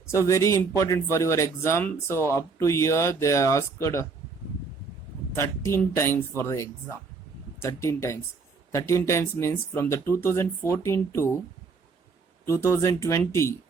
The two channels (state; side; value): quieter; left; 4.7 dB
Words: So very important for your exam. So up to here, they are asked 13 times for the exam. 13 times. 13 times means from the 2014 to 2020